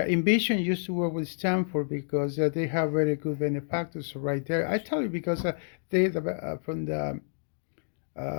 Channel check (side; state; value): right; silent; digital silence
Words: Envision used to work with Stanford because they have very good benefactors right there. I tell you because